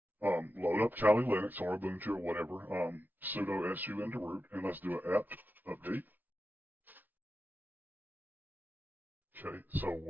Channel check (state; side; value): late; left; 0.085 ms